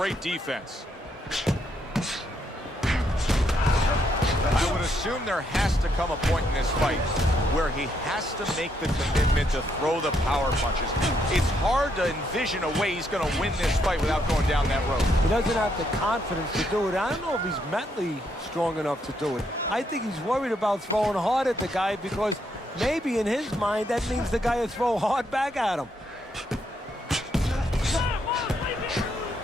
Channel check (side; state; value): both; normal; correlation 0.75